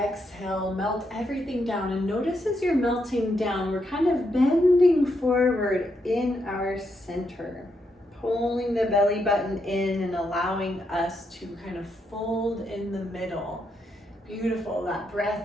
melt everything down, and notice as you're melting down, we're kind of bending forward in our center, pulling the belly button in and allowing us to kind of fold in the middle. Beautiful. That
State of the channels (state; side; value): normal; both; correlation 0.80